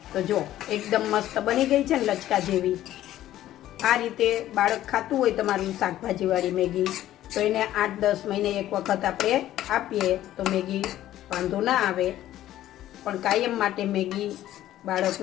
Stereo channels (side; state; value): right; quieter; 13.3 dB